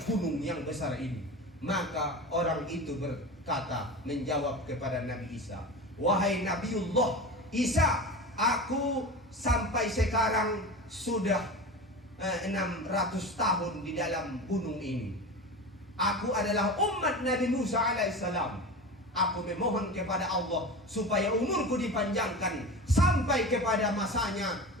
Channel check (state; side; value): normal; both; correlation 0.29